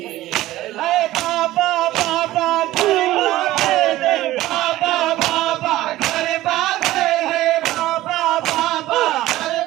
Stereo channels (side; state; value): left; quieter; 16.0 dB